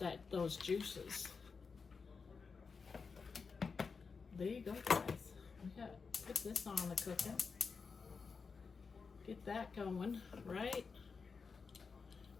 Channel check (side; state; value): right; quieter; 5.1 dB